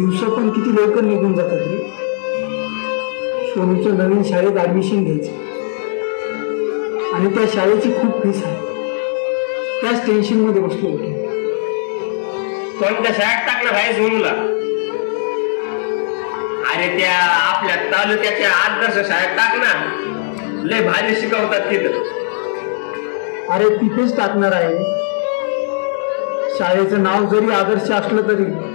पण किती लवकर निघून जातात रे. सोनूचं नवीन शाळेत ऍडमिशन घ्यायचं आणि त्या शाळेची खूप फीस आहे. त्याच टेन्शन मध्ये बसलो होतो. कोणत्या शाळेत टाकलं भाई सोनूला? अरे त्या आपल्या तालुक्याच्या आदर्श शाळेत टाक ना. लय भारी शिकवतात तिथं. अरे तिथेच टाकणार आहे. शाळेचं नाव जरी आदर्श असलं तरी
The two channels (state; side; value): silent; right; digital silence